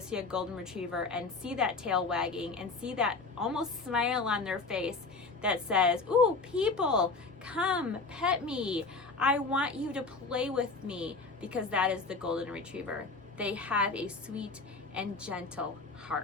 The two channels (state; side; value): quieter; right; 3.9 dB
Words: see a Golden Retriever and see that tail wagging and see that almost smile on their face that says, "Ooh, people, come pet me. I want you to play with me," because that is the Golden Retriever. They have a sweet and gentle